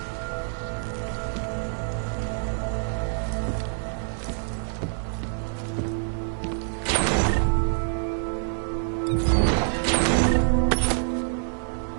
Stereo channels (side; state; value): left; silent; 61 dB below the other